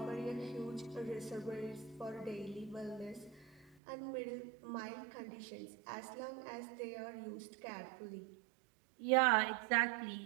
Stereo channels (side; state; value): left; drops out; at 3.8 s